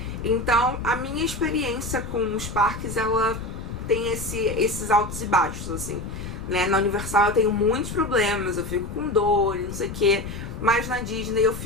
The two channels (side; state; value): left; noise; rumble, 9 dB below the sound